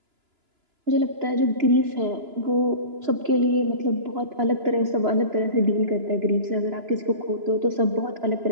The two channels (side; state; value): left; late; 2.9 ms